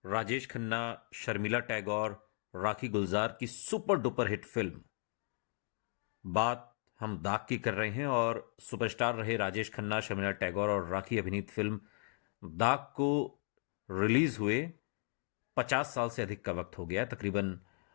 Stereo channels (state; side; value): silent; right; 54 dB below the other